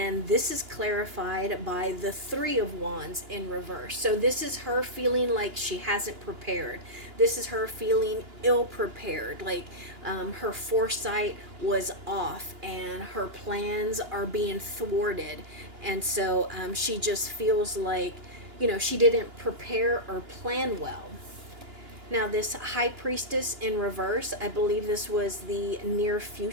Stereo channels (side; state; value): left; late; 2.9 ms